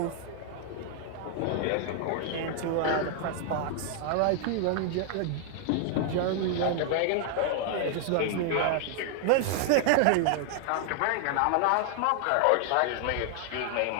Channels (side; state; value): both; different; correlation 0.00